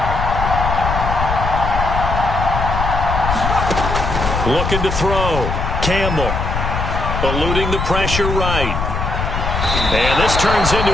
Looking to throw. Campbell. Eluding the pressure right. And this turns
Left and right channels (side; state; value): left; noise; rumble, 2 dB below the sound